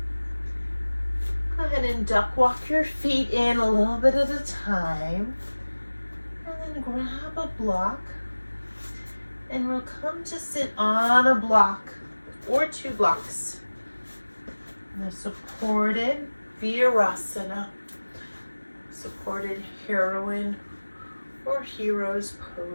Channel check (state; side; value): inverted; both; correlation -1.00